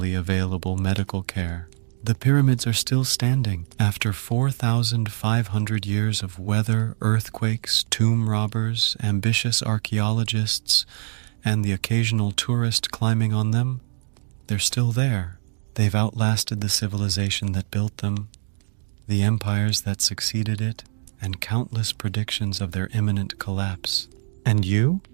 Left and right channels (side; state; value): left; silent; 63 dB below the other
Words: available medical care. The pyramids are still standing after 4,500 years of weather, earthquakes, tomb robbers, ambitious archaeologists, and the occasional tourist climbing on them. They're still there. They've outlasted the civilization that built them, the empires that succeeded it, and countless predictions of their imminent collapse. And you?